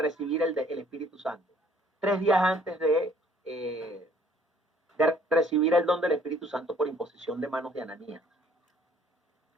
el Espíritu Santo. 3 días antes de recibir el don del Espíritu Santo por imposición de manos de Ananías.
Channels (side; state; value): both; normal; correlation 0.59